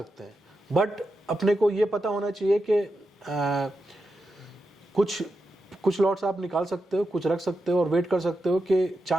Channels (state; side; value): normal; both; correlation 0.88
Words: हैं, बट अपने को ये पता होना चाहिए कि कुछ लॉट्स आप निकाल सकते हो, कुछ रख सकते हो और वेट कर सकते हो कि